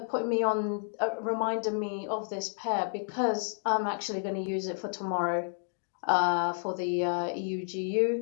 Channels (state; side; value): silent; right; digital silence